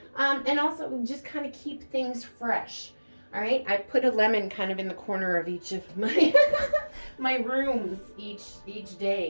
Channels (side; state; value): both; inverted; correlation -1.00